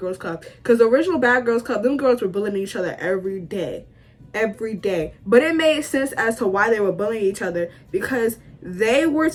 Club. Because the original Bad Girls Club, them girls were bullying each other every day. But it made sense as to why they were bullying each other, because they were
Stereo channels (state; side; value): identical; both; correlation 1.00